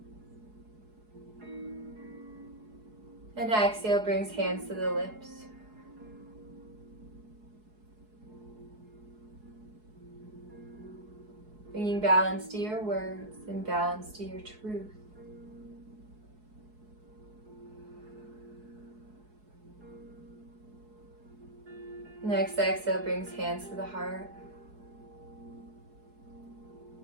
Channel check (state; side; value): late; left; 4.7 ms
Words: And exhale brings hands to the lips. Bringing balance to your words and balance to your truth. Next exhale brings hands to the heart.